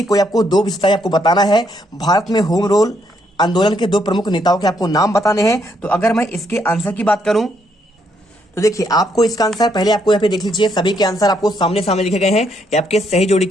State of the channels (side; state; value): both; normal; correlation 0.74